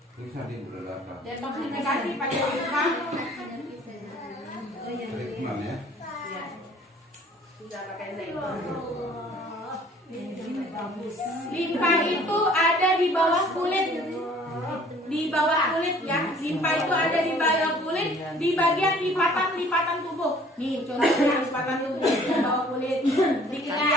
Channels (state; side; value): normal; both; correlation 0.54